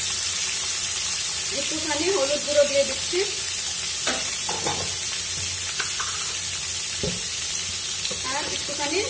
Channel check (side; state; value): both; identical; correlation 1.00